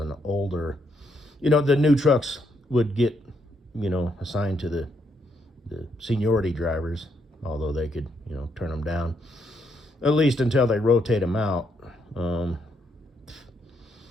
older, the new trucks would get, assigned to the seniority drivers, although they could, turn them down, at least until they rotate them out.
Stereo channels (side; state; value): both; normal; correlation 0.76